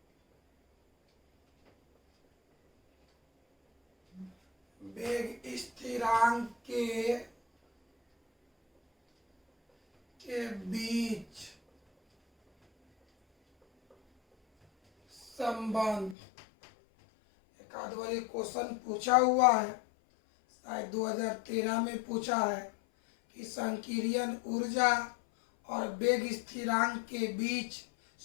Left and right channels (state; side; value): drops out; right; at 16.2 s